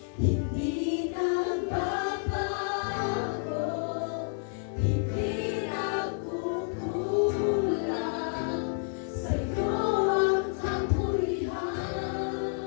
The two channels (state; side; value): silent; right; 58 dB below the other